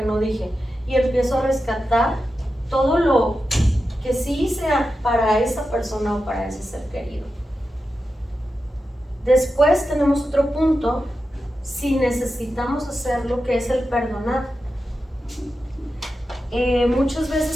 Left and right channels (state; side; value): normal; both; correlation 0.91